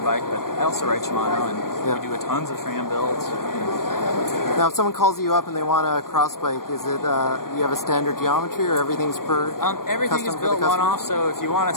bike, but I also ride Shimano, and we do tons of tram builds. Now, if someone calls you up and they want a cross bike, is it you have a standard geometry, or everything's everything is built one-off. So if you want a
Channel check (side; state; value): right; late; 0.92 ms